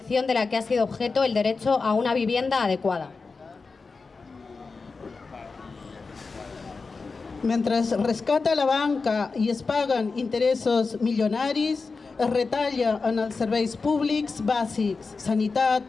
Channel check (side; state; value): right; quieter; 4.4 dB